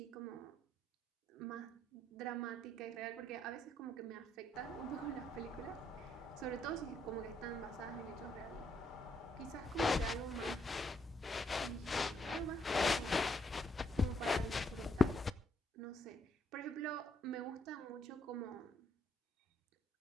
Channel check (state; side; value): normal; both; correlation 0.73